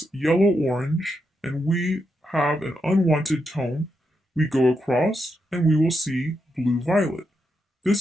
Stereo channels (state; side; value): normal; both; correlation 0.83